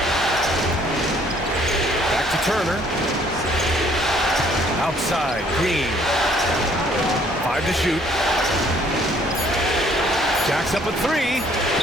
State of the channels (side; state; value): both; normal; correlation 0.62